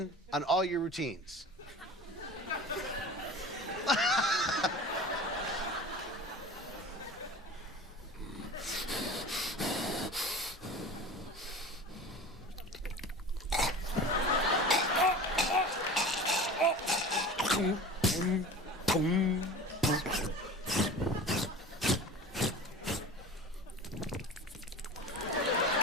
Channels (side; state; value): both; normal; correlation 0.37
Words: on all your routines.